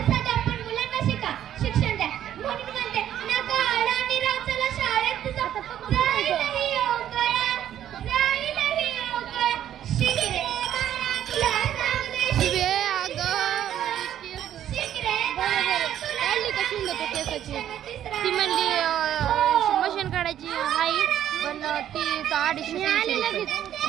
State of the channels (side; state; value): left; quieter; 11.0 dB